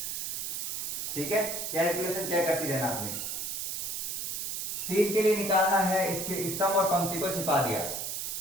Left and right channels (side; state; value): right; noise; hiss, 3 dB below the sound